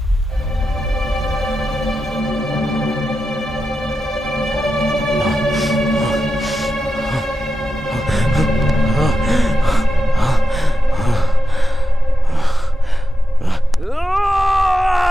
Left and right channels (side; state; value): both; normal; correlation 0.89